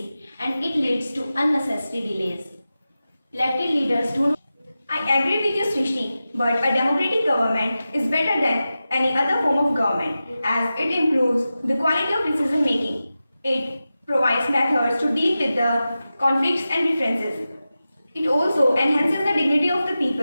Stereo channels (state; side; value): inverted; both; correlation -0.94